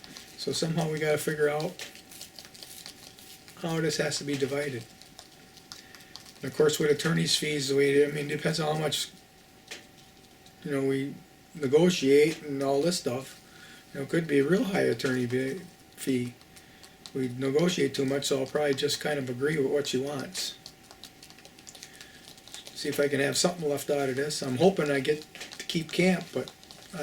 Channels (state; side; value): identical; both; correlation 1.00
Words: So somehow we got to figure out how this has to be divided. And of course, with attorney's fees, it depends on how much, we negotiate and all this stuff. It could be a real high attorney fee. we negotiate too much, so I'll probably just kind of agree with what she wants. See if I can have something left out of this. I'm hoping I get to keep camp, but